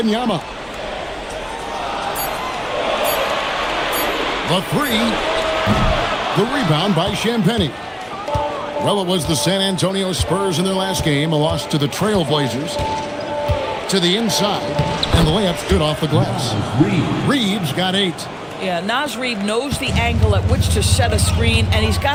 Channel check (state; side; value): identical; both; correlation 1.00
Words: The three. The rebound by Champagnie. Well, it was the San Antonio Spurs in their last game, a loss to the Trail Blazers. To the inside, and the layup's good off the glass. Reeves got 8. Yeah, Naz Reid knows the angle at which to set a screen, and he's